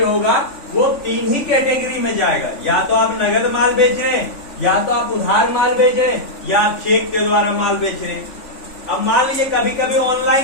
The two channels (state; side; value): late; right; 3.5 ms